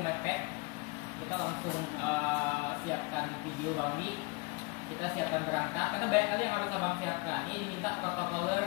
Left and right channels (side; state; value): right; quieter; 27.6 dB